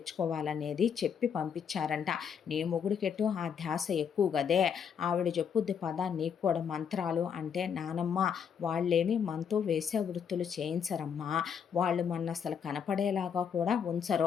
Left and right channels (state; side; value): quieter; right; 7.4 dB